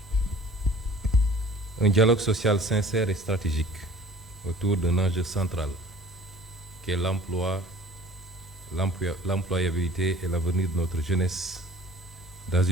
un dialogue social sincère et stratégique autour d'un enjeu central qui est l'emploi, l'employabilité et l'avenir de notre jeunesse dans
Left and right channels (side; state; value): both; normal; correlation 0.48